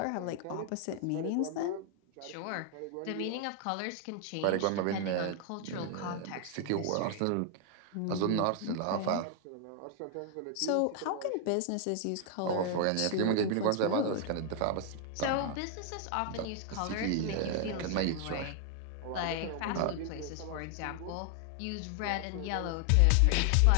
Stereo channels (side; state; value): both; different; correlation 0.00